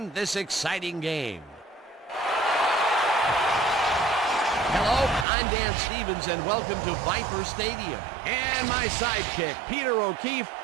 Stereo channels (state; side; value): drops out; left; at 5.2 s